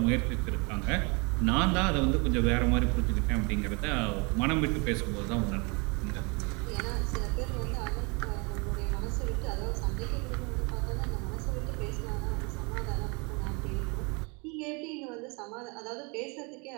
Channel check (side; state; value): left; quieter; 30.5 dB